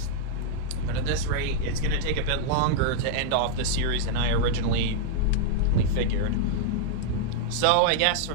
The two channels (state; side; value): different; both; correlation -0.01